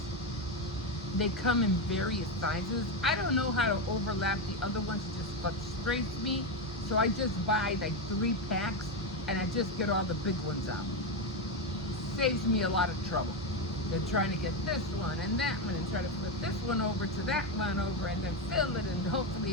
they come in various sizes. I don't know how to overlap the other ones. It just frustrates me. So I just buy like 3 packs, and I just get all the big ones out. Saves me a lot of trouble than trying to get this one and that one, and try to flip this one over to that one over, and then fill it, and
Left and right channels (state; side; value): normal; both; correlation 0.10